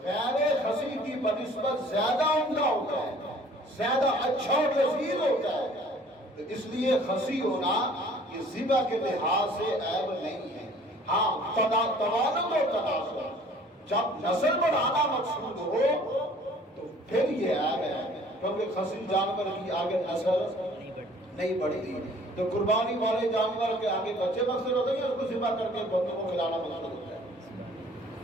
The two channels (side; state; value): both; normal; correlation 0.53